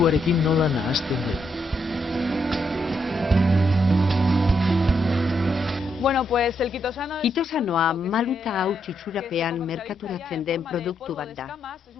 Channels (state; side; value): normal; both; correlation 0.78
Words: nola nahasten den. Kitosanoa maluta hauts itxurapean merkaturatzen den produktu bat da.